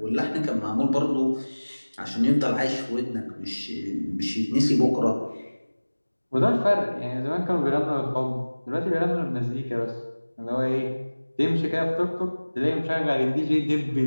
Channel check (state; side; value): inverted; both; correlation -1.00